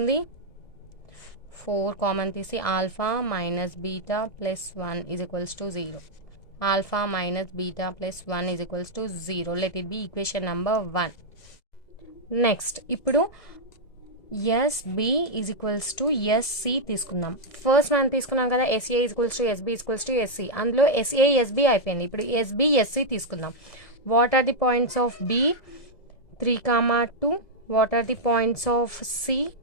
4 కామన్ తీసి alpha minus beta plus 1 is equals to 0. Alpha minus beta plus 1 is equals to 0. Let it be equation number 1. Next ఇప్పుడు SB is equals to SC తీసుకుందాం. First మనం తీసుకున్నాం కదా, SA is equals to SB is equals to SC. అందులో SA SB అయిపోయింది, ఇప్పుడు SB SC తీసుకుందాం. What are the points of B? 3,2. What are the points of C?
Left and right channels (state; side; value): late; right; 1.7 ms